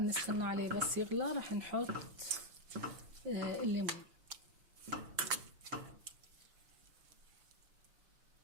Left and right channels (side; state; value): left; late; 5.9 ms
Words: عليه بس يغلى، راح نحط الليمون.